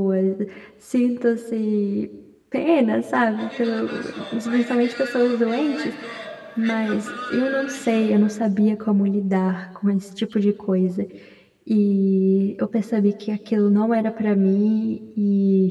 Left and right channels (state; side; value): identical; both; correlation 1.00